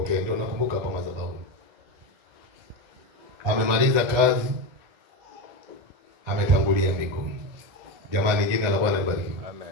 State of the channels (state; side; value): late; left; 1.4 ms